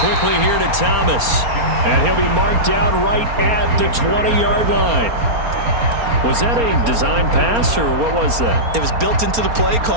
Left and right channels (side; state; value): left; late; 4.3 ms